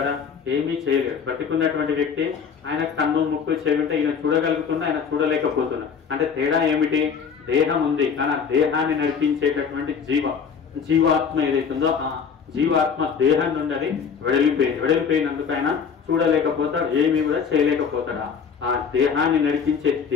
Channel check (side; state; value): right; quieter; 6.5 dB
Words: ఏమీ చేయలేడు. బతికున్నటువంటి వ్యక్తి ఆయన కన్ను ముక్కు చెవి ఉంటే ఈయన చూడగలుగుతున్నా, ఆయన చూడలేకపోతున్నా. అంటే తేడా ఏమిటి? దేహం ఉంది కానీ ఆ దేహాన్ని నడిపించేటటువంటి జీవాత్మ ఏదైతుందో ఆ జీవాత్మ దేహం నుండి అది వెడలిపోయినందుకు ఆయన చూడలేకపోతాడు, ఏమీ కూడా చేయలేకపోతాడు. ఆ దేహాన్ని నడిపించే